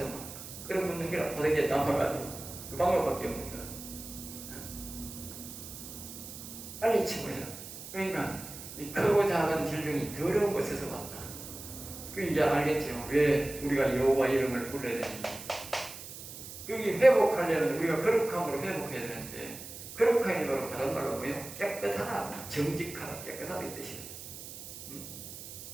막 끓여먹는 거라. 바닥에 남아가지고 그 방법밖에 없는 거라. 빨리 치워야. 그러니까 이 크고 작은 질병이 더러운 곳에서 왔다. 그 이제 알겠죠. 왜 우리가 여호와 이름을 불러야 되는지. 여기 회복하려면 우리가 거룩함으로 회복해야 되는데 거룩함이 바로 다른 말로 뭐예요? 깨끗하다, 정직하다, 깨끗하다 이 뜻이에요.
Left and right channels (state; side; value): noise; right; hiss, 12 dB below the sound